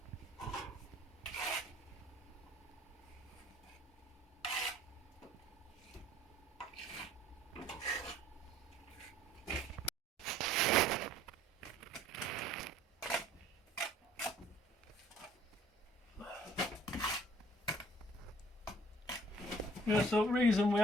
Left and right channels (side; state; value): both; normal; correlation 0.57